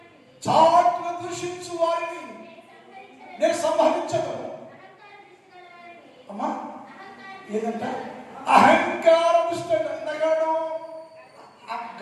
చాటున దూషించు వారిని నేను సంహరించను. అమ్మా ఏదంట? అహంకార దుష్ట నగాడు.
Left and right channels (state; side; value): identical; both; correlation 1.00